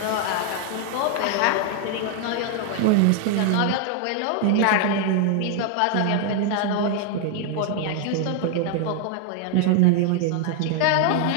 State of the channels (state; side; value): different; both; correlation 0.00